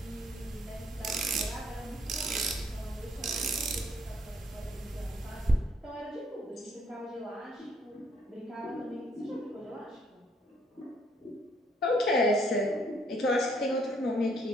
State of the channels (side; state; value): both; normal; correlation 0.67